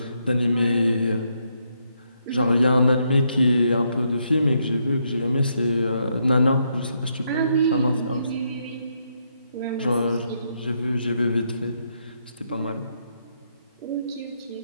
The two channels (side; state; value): both; inverted; correlation -0.77